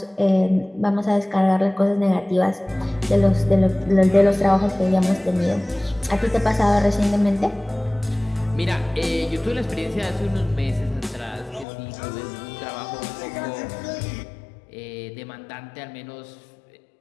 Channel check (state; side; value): drops out; right; at 11.7 s